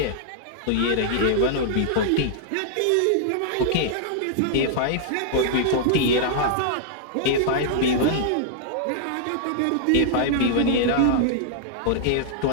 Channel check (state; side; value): different; both; correlation -0.01